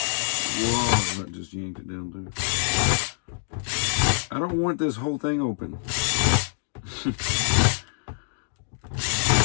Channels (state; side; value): silent; right; digital silence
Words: whoa, that just yanked it down too. I don't want this whole thing open.